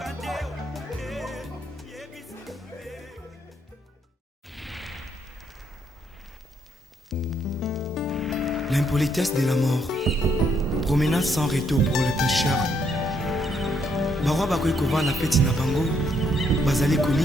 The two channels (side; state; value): both; normal; correlation 0.73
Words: te eyebisa te. L'impolitesse de la mort, promenade sans retour pour les pécheurs. Barwa bakoki kovanda peti na bango bazali